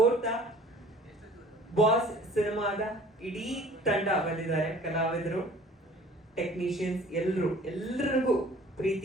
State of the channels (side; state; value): both; normal; correlation 0.50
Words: ಬಾಸ್ ಸಿನಿಮಾದ ಇಡೀ ತಂಡ ಬಂದಿದ್ದಾರೆ. ಕಲಾವಿದರು, ಟೆಕ್ನಿಷಿಯನ್ಸ್ ಎಲ್ಲರಿಗೂ